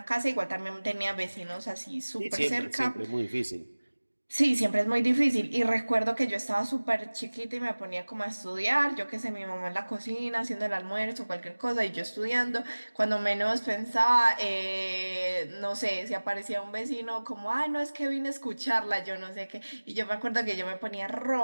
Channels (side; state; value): both; inverted; correlation -1.00